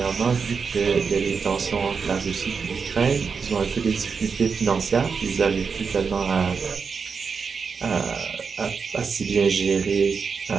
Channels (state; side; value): quieter; left; 5.6 dB